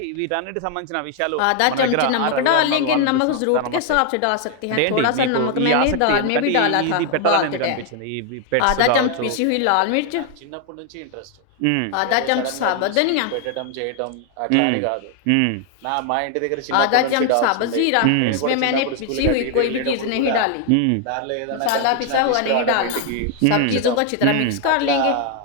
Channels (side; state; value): both; different; correlation 0.00